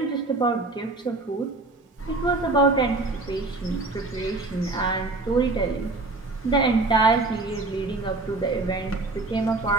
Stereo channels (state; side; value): quieter; left; 3.2 dB